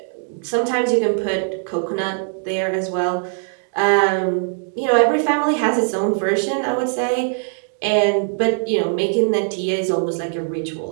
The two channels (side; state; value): left; silent; 65 dB below the other